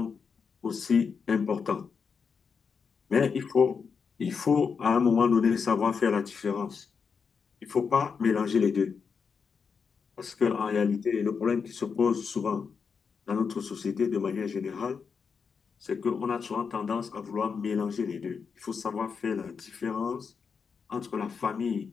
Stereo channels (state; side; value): quieter; right; 5.8 dB